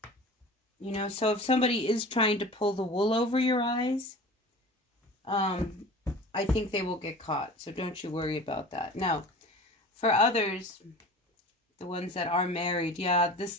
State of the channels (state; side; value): normal; both; correlation 0.39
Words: So if somebody is trying to pull the wool over your eyes, I think they will get caught. So don't you worry about that. Now, for others, the ones that are married, yeah,